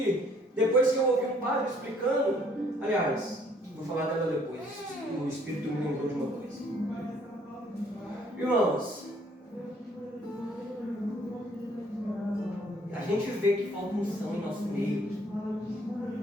depois que eu ouvi um padre explicando, aliás, vou falar dela depois, o Espírito me lembrou de uma coisa. Irmãos, a gente vê que falta unção em nosso meio.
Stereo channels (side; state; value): both; normal; correlation 0.63